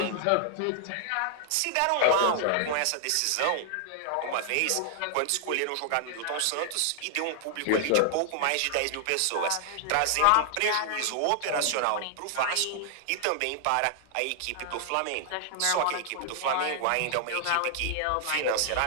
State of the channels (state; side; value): different; both; correlation 0.00